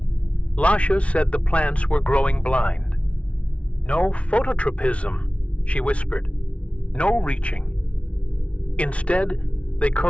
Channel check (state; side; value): late; right; 0.063 ms